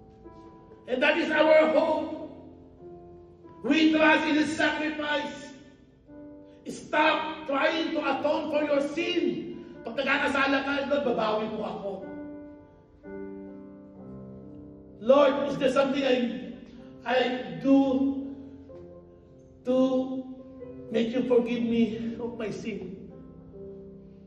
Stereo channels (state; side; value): identical; both; correlation 1.00